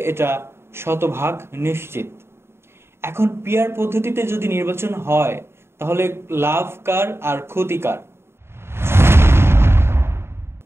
এটা শতভাগ নিশ্চিত। এখন পিআর পদ্ধতিতে যদি নির্বাচন হয় তাহলে লাভ কার আর ক্ষতি কার?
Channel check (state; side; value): late; left; 0.12 ms